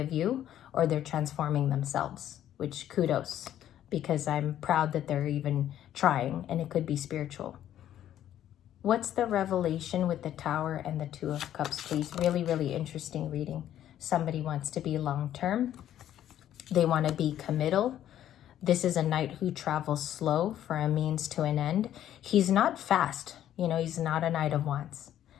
you, or they're transforming themselves, which kudos, because I'm proud that they're even trying, and it could be spiritual. What's the revelation with the Tower and the Two of Cups, please? Really, really interesting reading. Somebody wants to be long-term. They want to be committal. This is a knight who travels slow for a means to an end. He's not fast. You know, he's not a Knight of Wands.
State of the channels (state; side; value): quieter; right; 11.5 dB